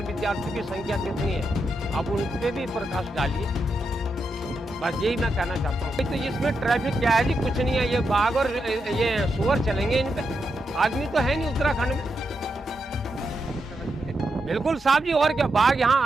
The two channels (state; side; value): normal; both; correlation 0.84